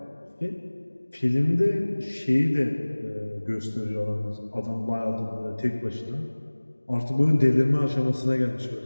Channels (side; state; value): both; inverted; correlation -1.00